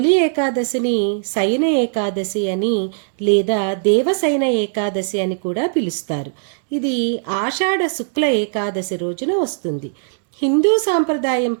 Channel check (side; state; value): left; silent; digital silence